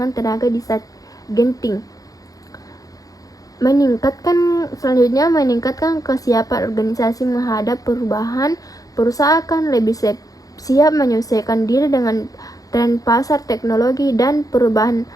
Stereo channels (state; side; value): late; right; 0.17 ms